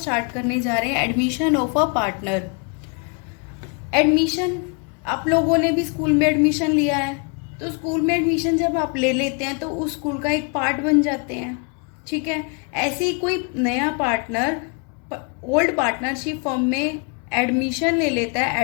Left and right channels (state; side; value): quieter; right; 35.5 dB